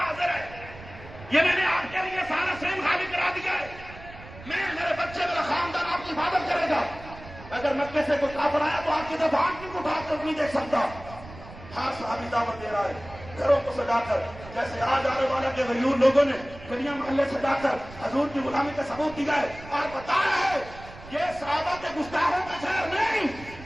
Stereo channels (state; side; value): noise; right; rumble, 16 dB below the sound